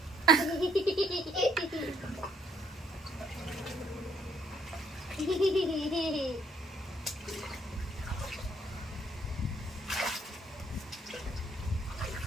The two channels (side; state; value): both; normal; correlation 0.68